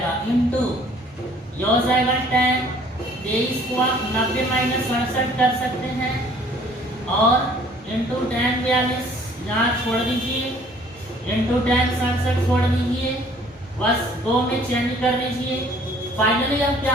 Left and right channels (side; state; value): both; normal; correlation 0.56